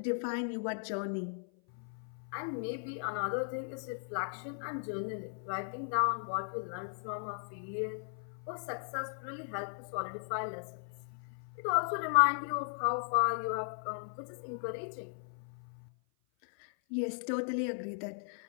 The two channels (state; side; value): silent; right; 53 dB below the other